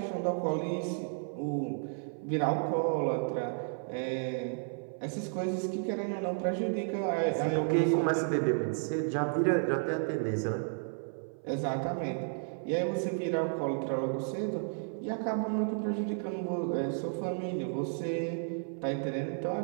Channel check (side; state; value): left; silent; 56 dB below the other